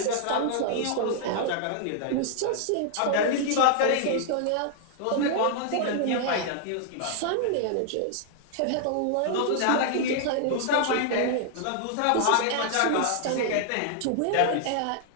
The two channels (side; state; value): both; different; correlation 0.00